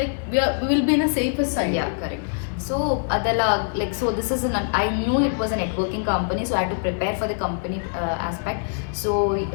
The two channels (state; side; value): silent; right; digital silence